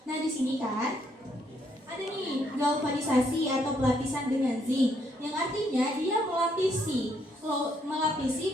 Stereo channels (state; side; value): normal; both; correlation 0.72